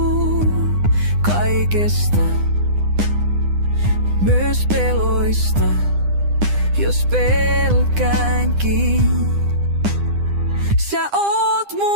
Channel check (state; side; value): late; left; 9.9 ms